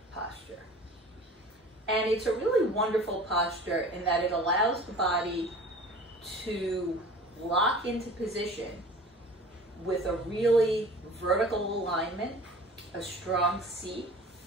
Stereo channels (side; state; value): both; normal; correlation 0.42